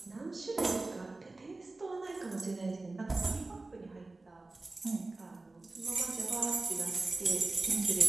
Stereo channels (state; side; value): quieter; left; 3.2 dB